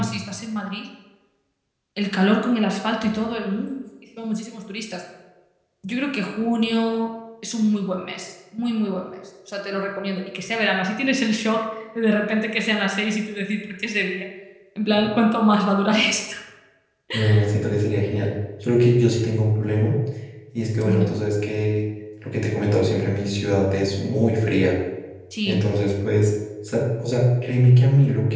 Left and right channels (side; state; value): both; identical; correlation 1.00